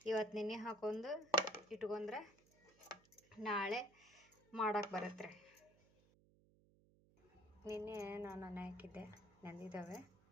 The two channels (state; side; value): noise; right; hum, 29 dB below the sound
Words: ಇವತ್ತು ನೆನೆ ಹಾಕೊಂಡು ಇಟ್ಕೊಂಡ್ರೆ ನಾಳೆ ಮಾಡೋಕೆ ಬರುತ್ತೆ ರೀ. ನಿನ್ನೆ ನಾನು ನೆನೆ ಹಾಕಿದ್ದೆ, ನೆಂದಿದ್ದಾವೆ.